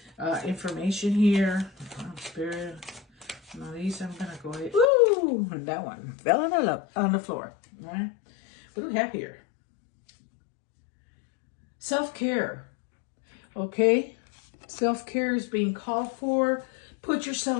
information here. Spirit. Now these I'm going to go ahead. Ooh, that one fell on the floor, right? What do we have here? Self-care, okay? Self-care is being called for. Put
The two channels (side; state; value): right; drops out; at 4.9 s